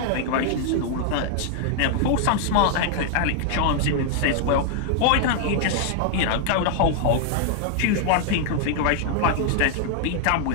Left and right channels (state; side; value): different; both; correlation 0.00